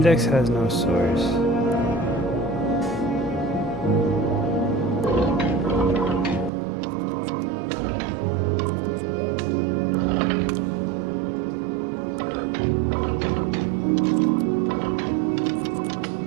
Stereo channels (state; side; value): drops out; left; at 6.5 s